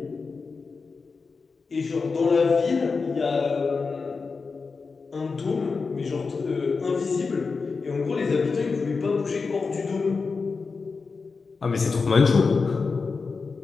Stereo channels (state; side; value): quieter; right; 4.6 dB